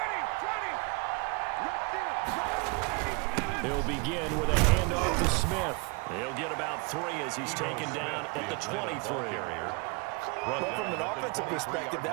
He'll begin with a handoff to Smith. He'll get about 3 as he's taken down at the 23. Well, from an offensive perspective,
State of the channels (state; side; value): quieter; left; 29.5 dB